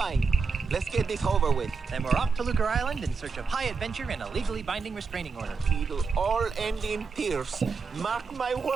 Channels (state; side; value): quieter; left; 5.0 dB